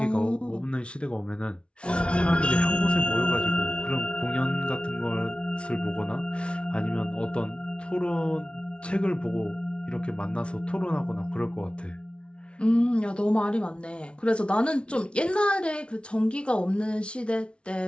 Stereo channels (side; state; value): right; late; 0.059 ms